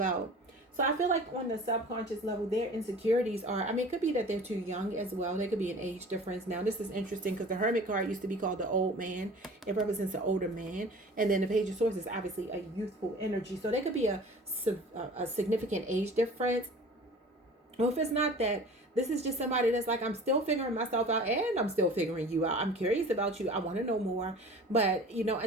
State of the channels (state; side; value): normal; both; correlation 0.43